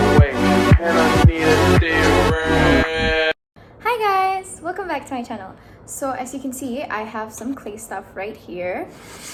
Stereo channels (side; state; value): both; identical; correlation 1.00